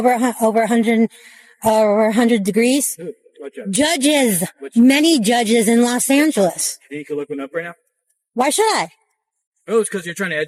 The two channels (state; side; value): identical; both; correlation 1.00